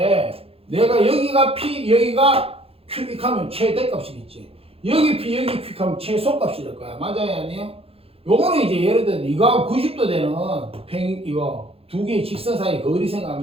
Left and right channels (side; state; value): left; late; 0.28 ms